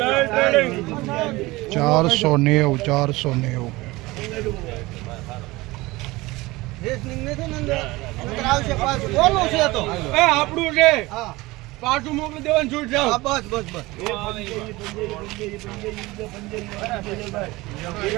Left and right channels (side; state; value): left; quieter; 20.9 dB